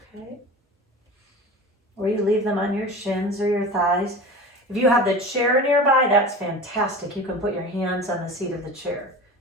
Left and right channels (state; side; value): normal; both; correlation 0.34